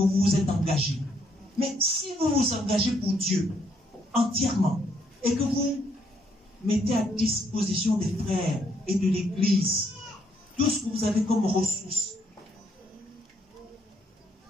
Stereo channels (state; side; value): normal; both; correlation 0.71